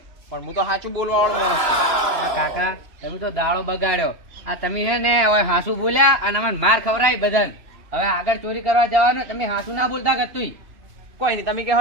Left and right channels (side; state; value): left; late; 3.0 ms